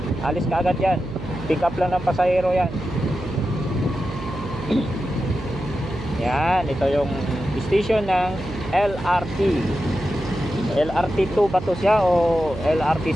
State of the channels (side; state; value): right; noise; hum, 10 dB below the sound